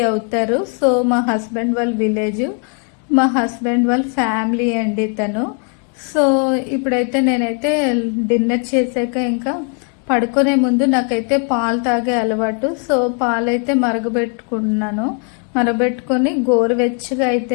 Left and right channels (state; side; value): quieter; right; 39.9 dB